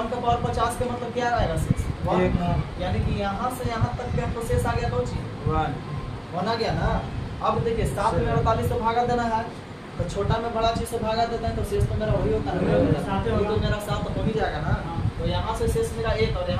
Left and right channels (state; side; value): identical; both; correlation 1.00